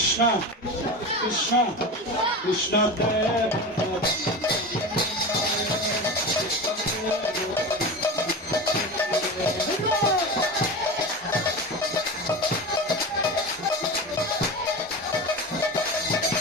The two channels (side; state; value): both; normal; correlation 0.27